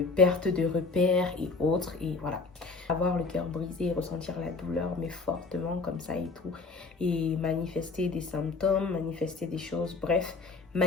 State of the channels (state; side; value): quieter; right; 4.0 dB